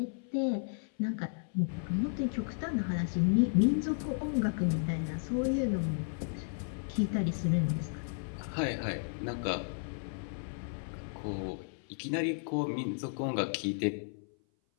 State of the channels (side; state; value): right; silent; 55 dB below the other